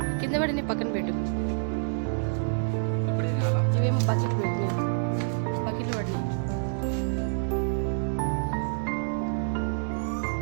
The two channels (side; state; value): left; silent; digital silence